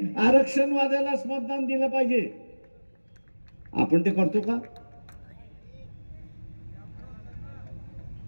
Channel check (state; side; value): inverted; both; correlation -1.00